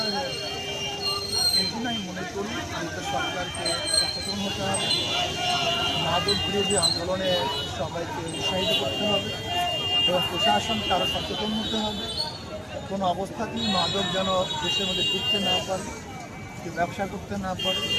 হয়ে যায়। এই জন্য আমি মনে করি আমাদের সরকারকে সচেতন হতে হবে, মাদক বিরোধী আন্দোলনে সবাইকে উৎসাহিত করতে হবে এবং প্রশাসনকে আরও সচেতন হতে হবে। কোনো অবস্থাতেই মাদক যেন দেশের মধ্যে ঢুকতে না পারে, ব্যবসা করতে না পারে,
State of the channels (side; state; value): both; identical; correlation 1.00